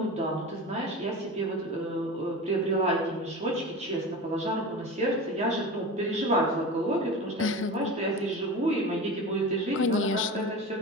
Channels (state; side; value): normal; both; correlation 0.30